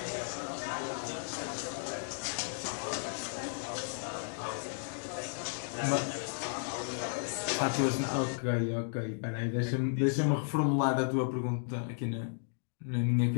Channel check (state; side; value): silent; right; digital silence